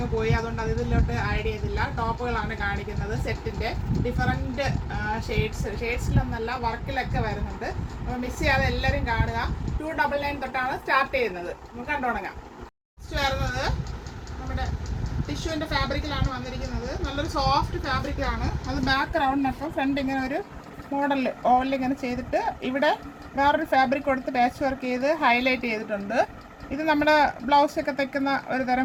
പോയി. അതുകൊണ്ട് അതിലോട്ട് ആഡ് ചെയ്തില്ല. ടോപ്പുകളാണ് കാണിക്കുന്നത്. സെറ്റിൻ്റെ ഡിഫറൻറ്റ് ഷെയ്ഡ്സിലൊന്നല്ല, വർക്കിലൊക്കെ വരുന്നുണ്ട്. അപ്പോൾ മിസ് ചെയ്യാതെ എല്ലാവരും കാണുക. 299 തൊട്ടാണ് സ്റ്റാർട്ട് ചെയ്യുന്നത്. നമുക്ക് കണ്ടുതുടങ്ങാം. നെക്സ്റ്റ് വരുന്നത് നമ്മുടെ ടിഷ്യൂവിൻ്റെ ഫാബ്രിക്കിലാണ് വന്നിരിക്കുന്നത്. നല്ലൊരു സോഫ്റ്റ് ഫാബ്രിക്കിലാണ്. അത് ബാക്ക് റൗണ്ടിനൊപ്പം ഫ്രണ്ട് ഇങ്ങനെ ഒരു മോഡലിൽ ഓവലിൽ ഇങ്ങനെ ചെയ്തിട്ട് ഇവിടെ വേറൊരു ഫാബ്രിക് കൊടുത്ത് പാച്ച് വർക്ക് ചെയ്ത് ഹൈലൈറ്റ് ചെയ്തിട്ടുണ്ട്. ഇത് നമ്മുടെ ബ്ലൗസൊക്കെ തയ്ക്കുന്ന ഒരു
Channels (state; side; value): identical; both; correlation 1.00